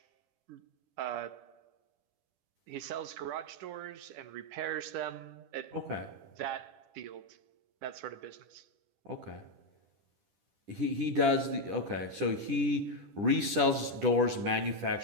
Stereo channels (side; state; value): left; late; 10 ms